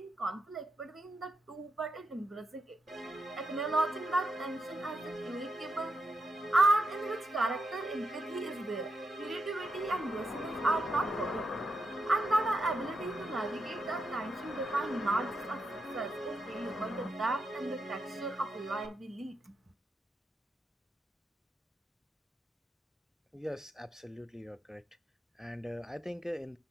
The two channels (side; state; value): both; normal; correlation 0.84